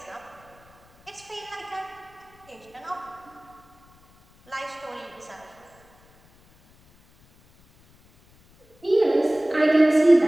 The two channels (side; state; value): left; noise; rumble, 29 dB below the sound